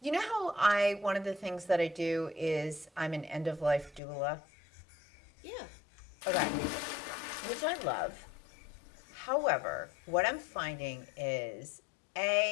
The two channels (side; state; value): right; drops out; at 4.0 s